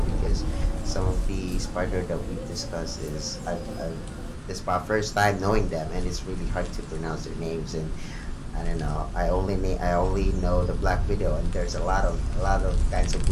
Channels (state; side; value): identical; both; correlation 1.00